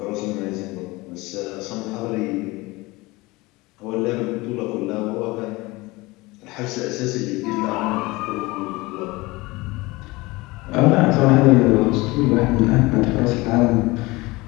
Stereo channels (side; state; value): right; quieter; 22.2 dB